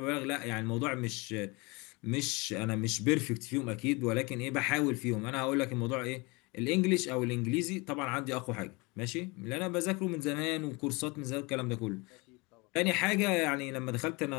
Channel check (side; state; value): right; quieter; 26.7 dB